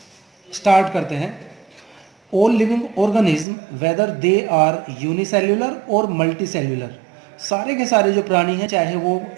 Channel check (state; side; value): drops out; left; at 3.5 s